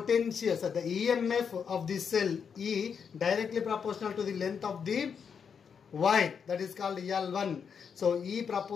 so the EMF of the cell E directly proportional to the length of the wire, that is called L1. So E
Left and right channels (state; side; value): quieter; right; 6.7 dB